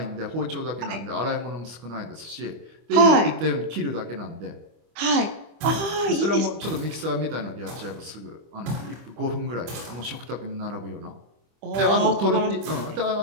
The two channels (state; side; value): late; left; 25 ms